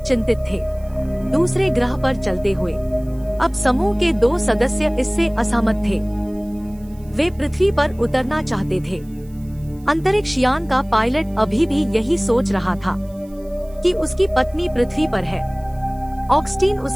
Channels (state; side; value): noise; right; hiss, 28 dB below the sound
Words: चिंतित थे दूसरे ग्रह पर चलते हुए। अब समूह के 2 सदस्य इससे असहमत थे। वे पृथ्वी पर उतरना चाहते थे। अंतरिक्ष यान का पायलट अभी भी यही सोच रहा था कि उसकी पत्नी पृथ्वी पर है। ऑगस्टीन